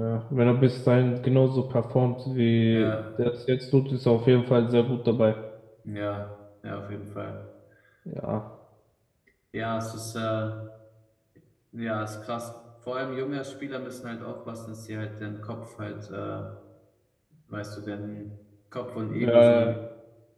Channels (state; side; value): identical; both; correlation 1.00